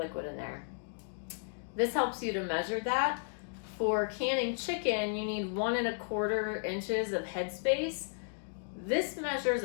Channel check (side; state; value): right; silent; digital silence